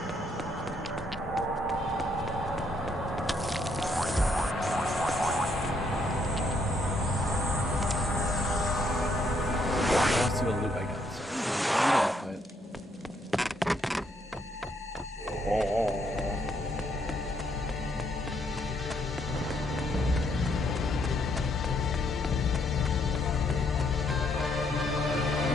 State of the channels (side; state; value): both; normal; correlation 0.72